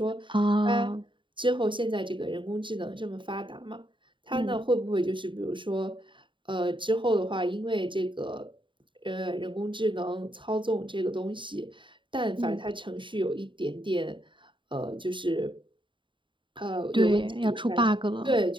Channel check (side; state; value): left; late; 0.24 ms